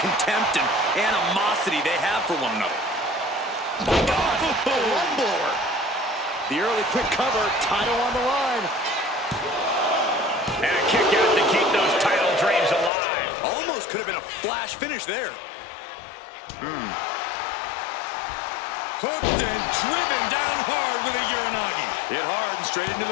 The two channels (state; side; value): drops out; right; at 12.9 s